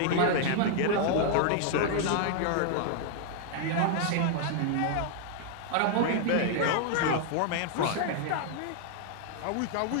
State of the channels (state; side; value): different; both; correlation 0.00